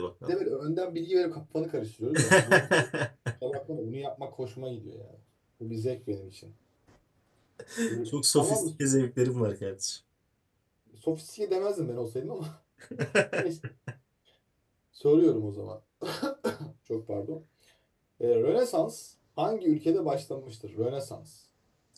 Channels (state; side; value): identical; both; correlation 1.00